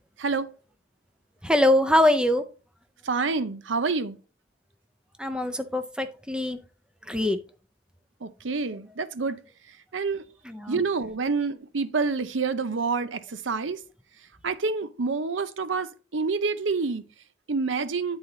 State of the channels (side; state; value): both; normal; correlation 0.40